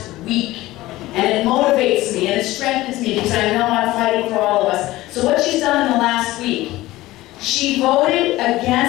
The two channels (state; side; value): quieter; right; 17.5 dB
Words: week. And it motivates me and it strengthens me because I know I'm fighting for all of us. So what she's done in the last week, she voted